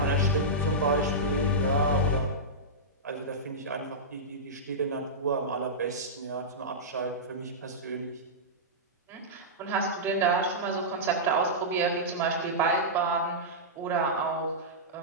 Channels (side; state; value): both; normal; correlation -0.13